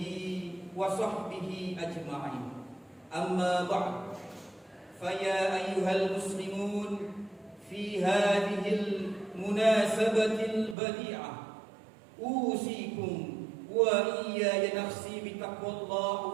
wa sahbihi ajma'in. Amma ba'd. Faya ayyuhal muslimun fi hadhil munasabatil badi'ah usikum wa iyaya nafsi bitaqwallah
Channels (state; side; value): drops out; left; at 10.8 s